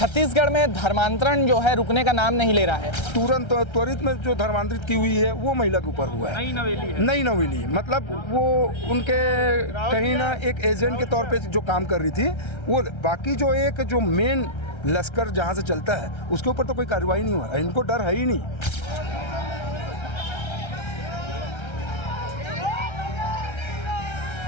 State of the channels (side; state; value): right; late; 1.3 ms